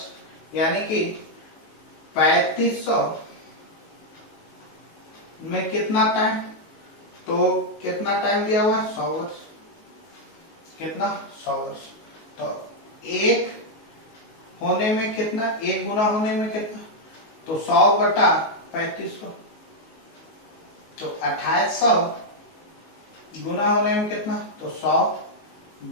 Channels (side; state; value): right; late; 19 ms